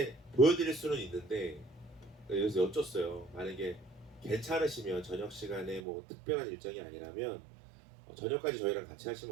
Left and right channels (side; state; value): left; drops out; at 5.8 s